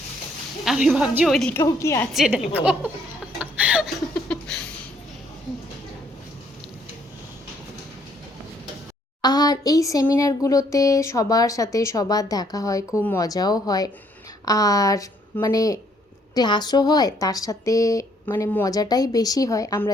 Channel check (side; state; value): both; normal; correlation 0.67